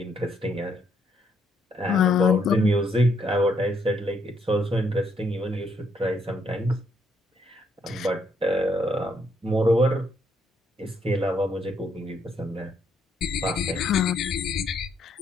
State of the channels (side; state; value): both; normal; correlation 0.73